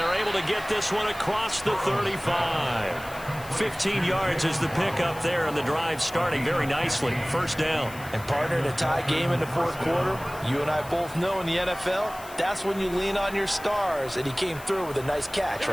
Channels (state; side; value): noise; left; hiss, 18 dB below the sound